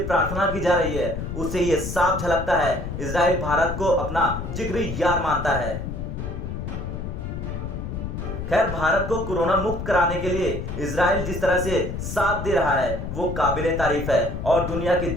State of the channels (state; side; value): noise; left; rumble, 6 dB below the sound